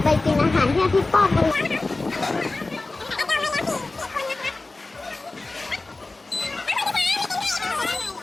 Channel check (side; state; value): right; quieter; 3.3 dB